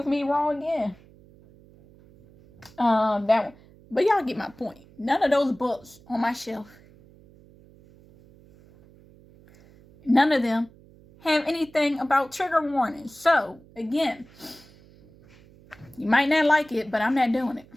me wrong again. That one. But y'all get my point. None of those books on my shelf, none of them have anything about trigger warnings. So, again, you might not like it, but I'm not doing it.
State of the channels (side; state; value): right; noise; hum, 25 dB below the sound